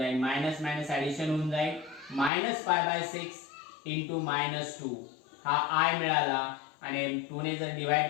मायनस मायनस ऍडिशन होऊन जाईल -π/6 इंटू -2 हा i मिळाला आणि 2 ने जर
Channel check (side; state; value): right; drops out; at 2.3 s